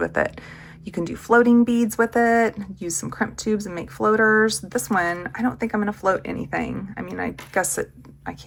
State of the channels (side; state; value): both; identical; correlation 1.00